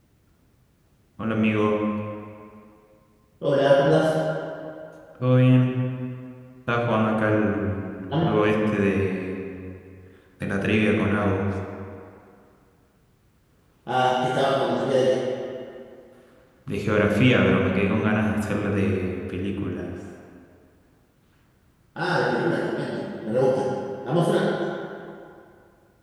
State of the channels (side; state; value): both; identical; correlation 1.00